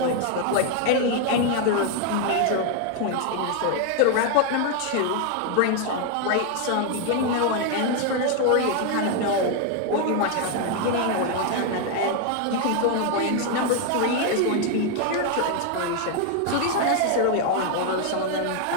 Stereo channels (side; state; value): both; different; correlation 0.01